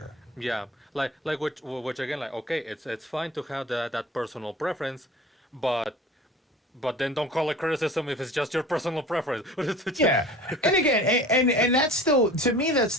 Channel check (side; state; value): both; normal; correlation 0.41